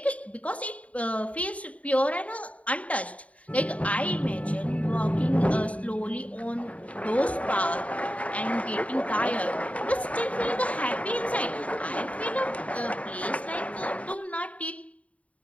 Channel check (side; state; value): right; late; 0.067 ms